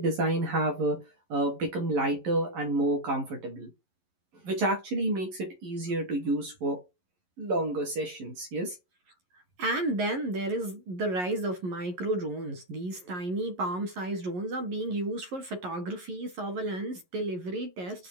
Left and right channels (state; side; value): late; left; 11 ms